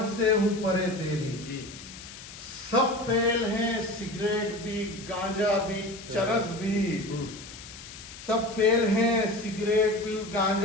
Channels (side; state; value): left; noise; hiss, 15 dB below the sound